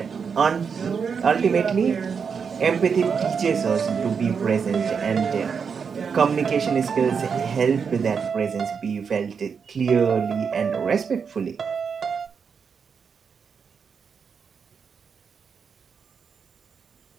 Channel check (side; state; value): left; quieter; 6.2 dB